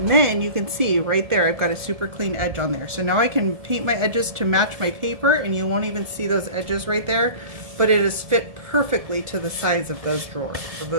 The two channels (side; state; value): left; late; 1.7 ms